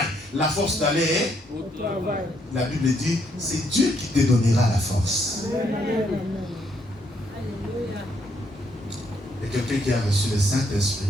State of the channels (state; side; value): normal; both; correlation 0.73